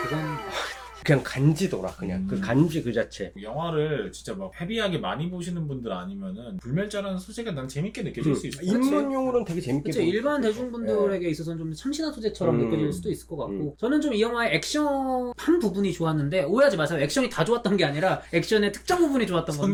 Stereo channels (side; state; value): both; identical; correlation 1.00